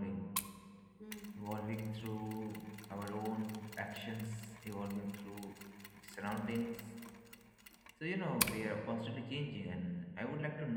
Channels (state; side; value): identical; both; correlation 1.00